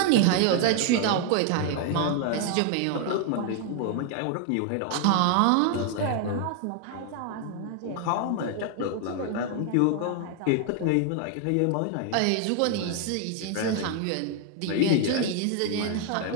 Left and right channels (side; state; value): both; different; correlation 0.00